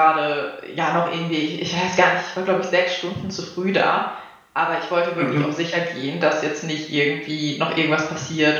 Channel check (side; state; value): both; identical; correlation 1.00